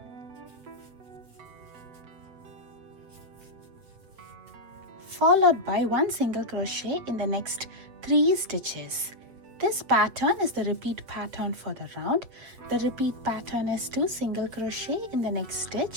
followed by 1 single crochet in the next 3 stitches. This pattern is the repeat pattern for the round. The repeat pattern is 2 single crochet in the next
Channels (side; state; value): left; late; 7.7 ms